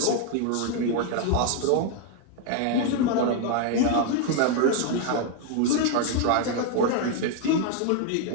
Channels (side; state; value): both; different; correlation 0.00